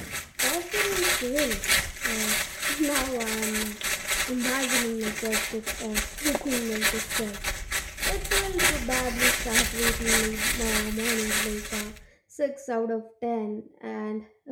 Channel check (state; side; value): identical; both; correlation 1.00